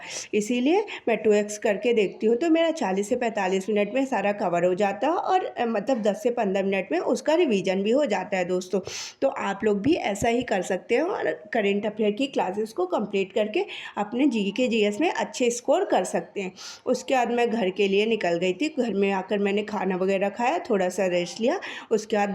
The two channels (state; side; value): identical; both; correlation 1.00